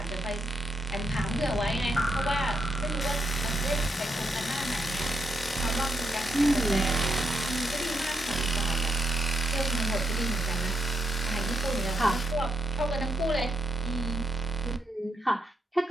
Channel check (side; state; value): both; normal; correlation 0.81